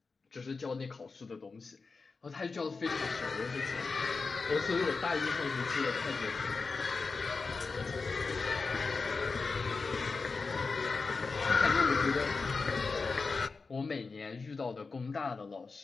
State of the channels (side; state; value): right; quieter; 4.3 dB